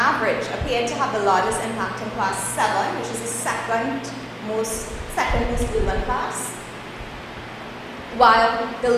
appeared to have the largest impact in class 7, which is the second most urban class, while the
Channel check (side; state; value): both; identical; correlation 1.00